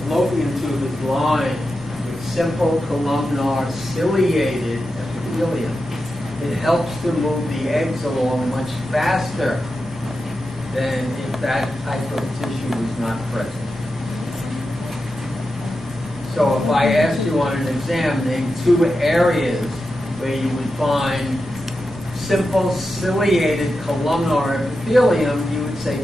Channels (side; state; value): both; normal; correlation 0.90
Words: fallopian tube is lined with simple columnar ciliated epithelium. It helps to move the eggs along much faster than if that type of tissue was not present. So if I asked you on an exam, name 2 areas where you would find simple ciliated columnar epithelium, you would say